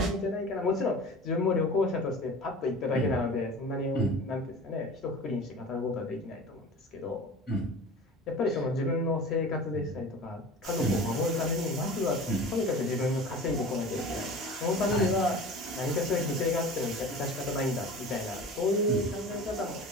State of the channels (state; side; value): normal; both; correlation 0.38